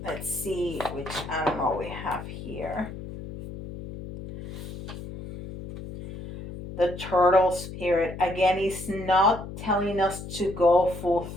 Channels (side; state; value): left; noise; hum, 11 dB below the sound